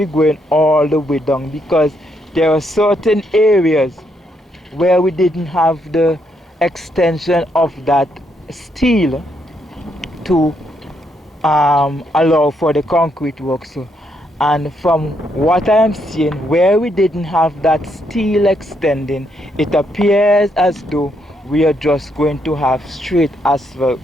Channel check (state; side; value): normal; both; correlation 0.76